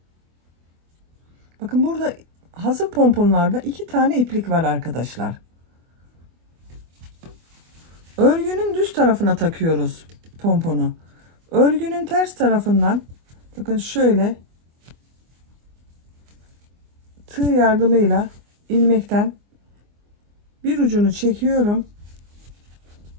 Bakın burada hazır pomponlarda 2 tane iplik var arkadaşlar. Örgünün düz tarafına takıyoruz pomponu. Örgünün ters tarafından bakın şöyle tığ yardımıyla ilmekten bir ucunu çekiyorum.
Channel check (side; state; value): left; late; 24 ms